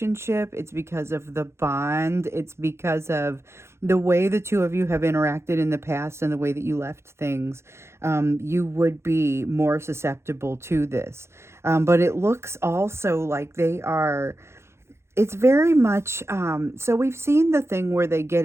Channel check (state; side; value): late; left; 0.13 ms